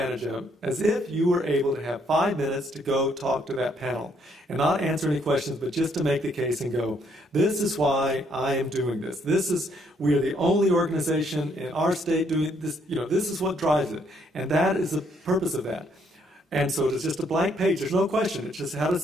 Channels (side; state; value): both; normal; correlation 0.70